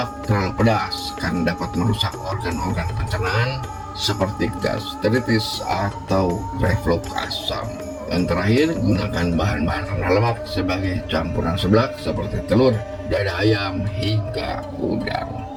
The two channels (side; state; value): both; identical; correlation 1.00